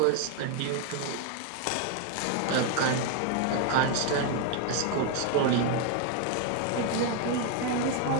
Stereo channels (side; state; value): both; different; correlation 0.00